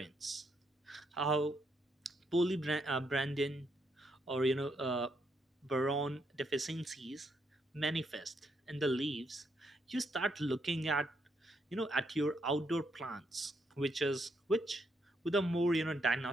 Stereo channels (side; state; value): both; normal; correlation 0.76